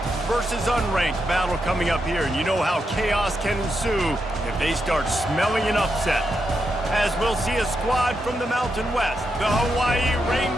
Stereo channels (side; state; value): both; normal; correlation 0.84